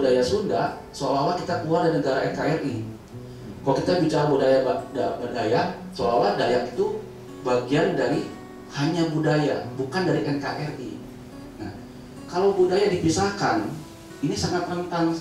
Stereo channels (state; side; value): identical; both; correlation 1.00